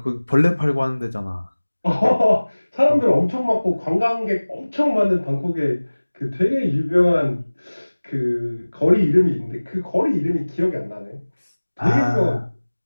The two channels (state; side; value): inverted; both; correlation -1.00